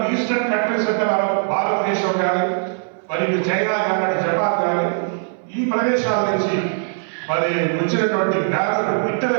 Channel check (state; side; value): silent; left; 60 dB below the other